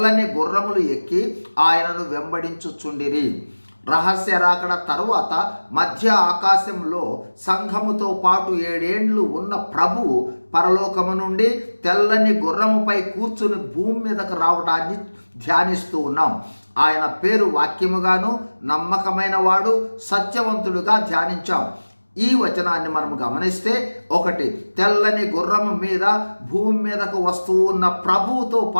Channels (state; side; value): inverted; both; correlation -1.00